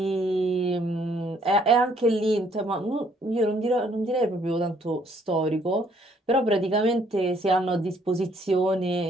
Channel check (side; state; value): both; normal; correlation 0.65